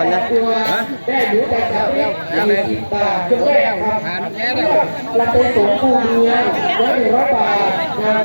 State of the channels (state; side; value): inverted; both; correlation -1.00